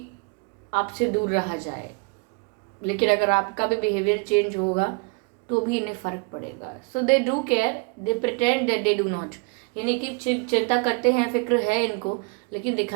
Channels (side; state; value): left; quieter; 32.0 dB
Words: आपसे दूर रहा जाए, लेकिन अगर आपका भी बिहेवियर चेंज होगा तो भी इन्हें फ़र्क पड़ेगा। So they do care, they pretend that they do not, यानी कि चिंता करते हैं, फिक्र है इनको, लेकिन